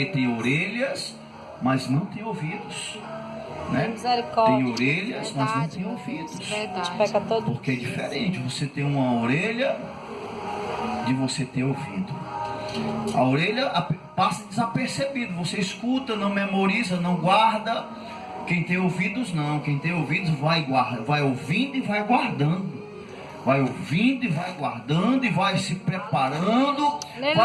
tem orelhas, mas não tem ouvidos, né? Tem orelhas, mas não tem ouvidos. Porque é diferente você ter uma orelha de você ter ouvido. A orelha passa desapercebido, você escuta, não memoriza, não guarda. Quem tem ouvidos não, quem tem ouvidos vai ouvindo e vai guardando. Vai ouvindo e vai guardando e vai se preparando,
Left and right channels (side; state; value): both; identical; correlation 1.00